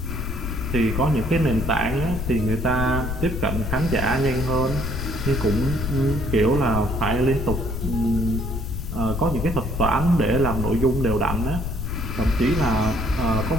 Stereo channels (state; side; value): noise; left; rumble, 4 dB below the sound